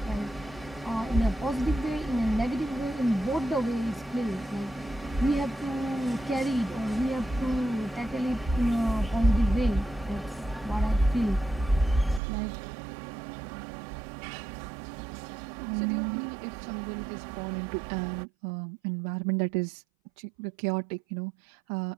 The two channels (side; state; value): left; drops out; at 12.2 s